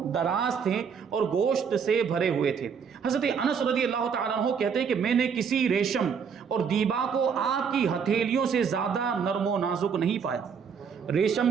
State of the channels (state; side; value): quieter; left; 6.6 dB